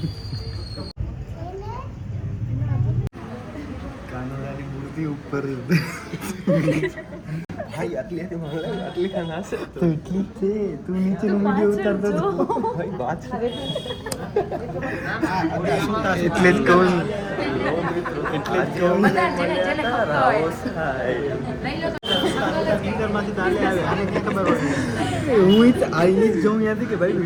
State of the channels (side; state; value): both; identical; correlation 1.00